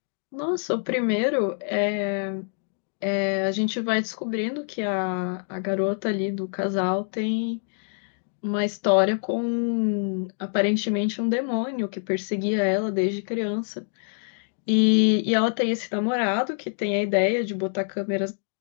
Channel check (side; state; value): right; silent; digital silence